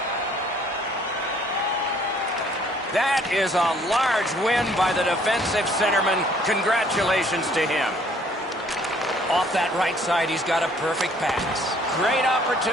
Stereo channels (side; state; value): both; normal; correlation 0.60